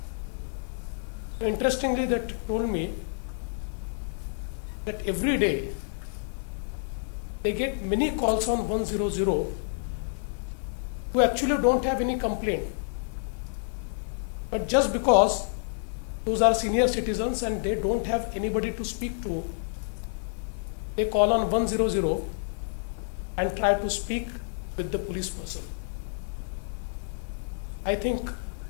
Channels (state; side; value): silent; right; 59 dB below the other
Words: So interestingly, they told me that every day they get many calls on 100 who actually don't have any complaint. But just because those are senior citizens and they don't have anybody to speak to, they call on 100 and try to speak with the police person. I think